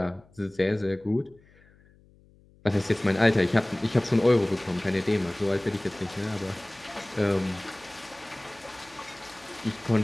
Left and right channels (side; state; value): left; noise; hum, 28 dB below the sound